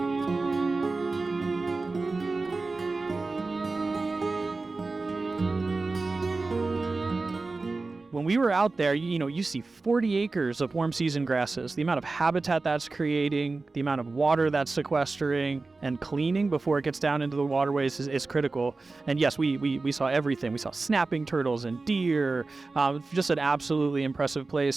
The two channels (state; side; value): quieter; left; 3.7 dB